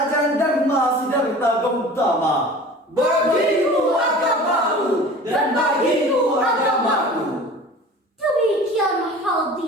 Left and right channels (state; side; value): normal; both; correlation 0.41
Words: Dharma Siddhartha Gautama. Bagimu agamamu dan bagiku agamaku. Demikian